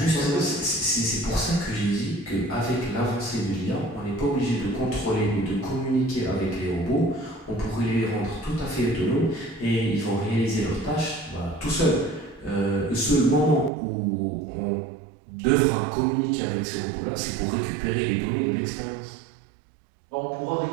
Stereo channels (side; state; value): left; drops out; at 13.7 s